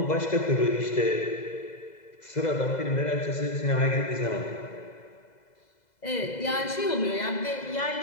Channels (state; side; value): late; right; 2.0 ms